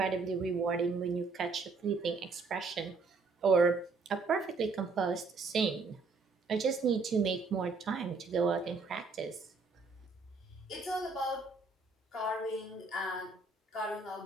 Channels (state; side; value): quieter; left; 4.1 dB